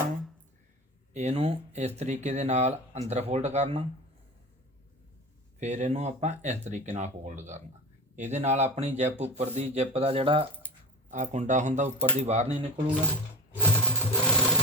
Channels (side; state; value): both; normal; correlation 0.16